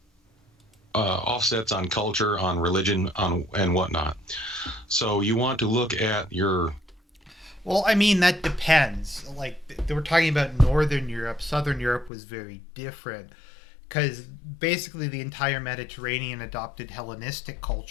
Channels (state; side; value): drops out; right; at 12.1 s